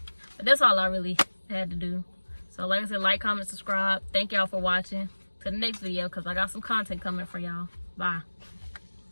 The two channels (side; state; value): both; inverted; correlation -1.00